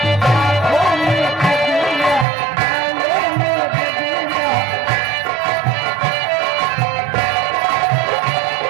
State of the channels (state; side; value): drops out; left; at 2.2 s